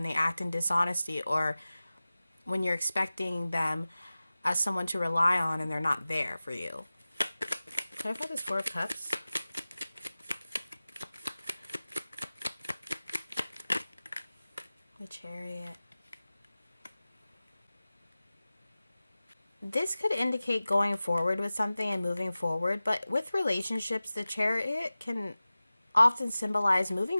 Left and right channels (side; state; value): both; inverted; correlation -0.97